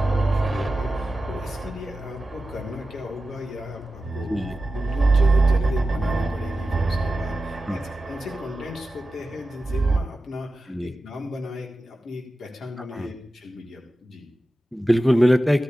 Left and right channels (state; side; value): normal; both; correlation 0.93